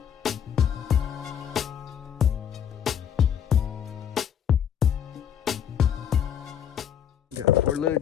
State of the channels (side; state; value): right; quieter; 8.8 dB